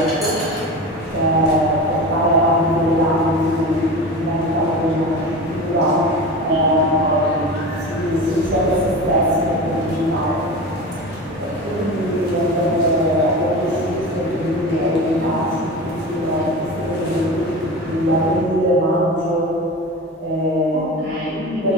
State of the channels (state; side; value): normal; both; correlation 0.30